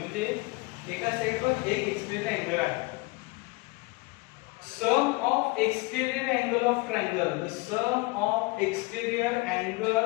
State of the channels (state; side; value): quieter; right; 25.1 dB